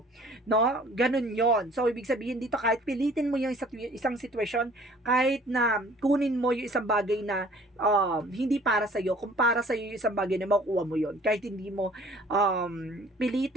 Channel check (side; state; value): both; normal; correlation 0.53